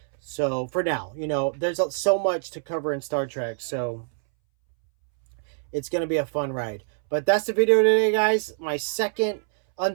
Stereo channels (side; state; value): left; silent; 62 dB below the other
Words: So, for now, there's so much to cover in Star Trek, so it's going to be a fun ride. But that's the video today, guys. My second